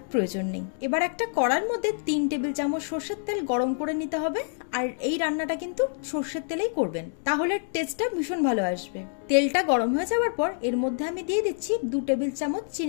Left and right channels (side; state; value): right; silent; 59 dB below the other